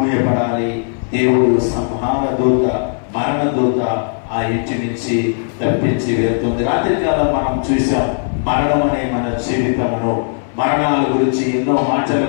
దేవుడు సంహార దూత, మరణ దూత ఆ ఇంటి నుంచి తప్పించి వెళ్తుంది. రాత్రికాలం మనం చూసాం మరణం అనే మన జీవితమును, మరణాల గురించి ఎన్నో మాటలు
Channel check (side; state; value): right; silent; 60 dB below the other